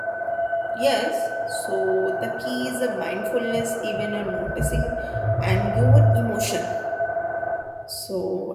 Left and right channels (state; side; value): identical; both; correlation 1.00